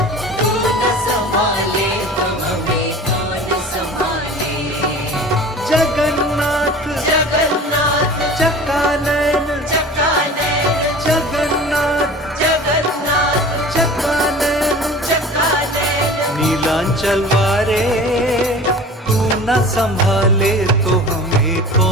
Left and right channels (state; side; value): normal; both; correlation 0.40